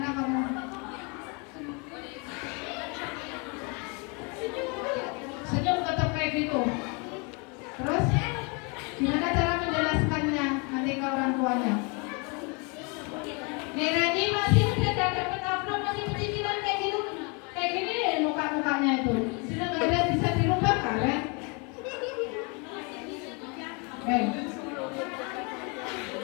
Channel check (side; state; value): right; quieter; 32.2 dB